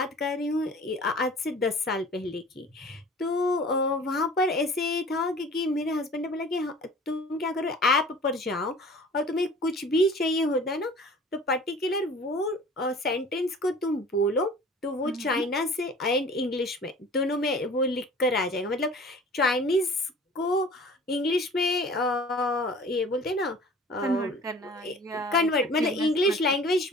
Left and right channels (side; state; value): both; normal; correlation 0.45